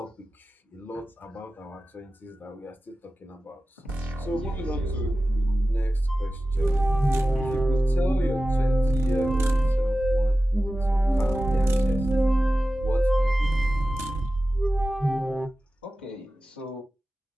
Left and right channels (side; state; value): both; normal; correlation 0.95